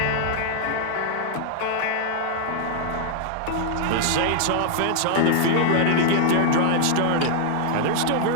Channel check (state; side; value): different; both; correlation 0.00